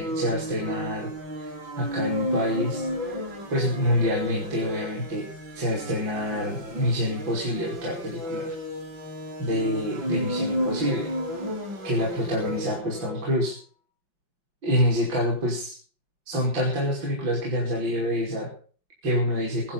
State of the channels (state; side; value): late; left; 5.3 ms